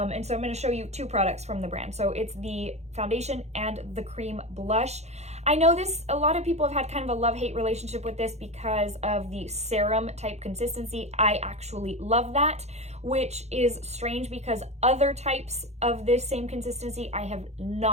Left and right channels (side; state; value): left; late; 0.32 ms